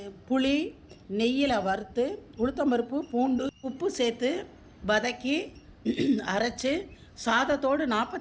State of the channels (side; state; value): both; identical; correlation 1.00